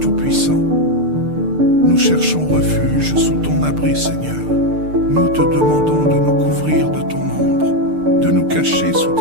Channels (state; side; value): late; left; 6.7 ms